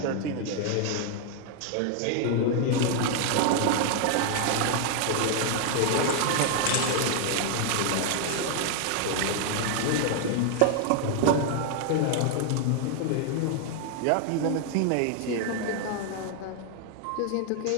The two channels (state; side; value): different; both; correlation 0.00